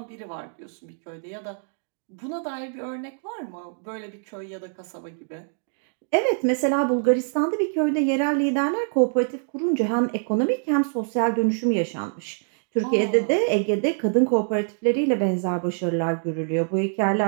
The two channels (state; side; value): silent; left; digital silence